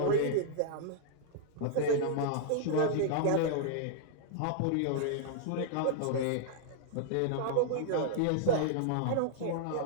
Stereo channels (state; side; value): different; both; correlation -0.01